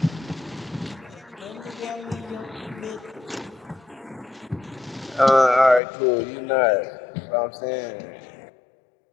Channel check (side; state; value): right; drops out; at 5.8 s